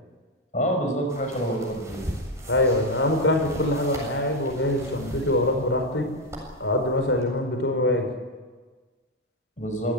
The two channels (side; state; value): both; normal; correlation 0.07